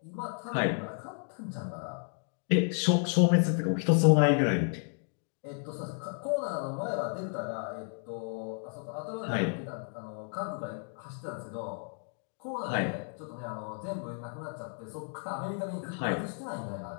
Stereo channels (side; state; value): right; silent; 56 dB below the other